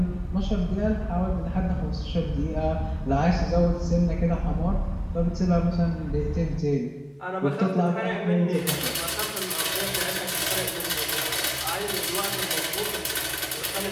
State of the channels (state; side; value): identical; both; correlation 1.00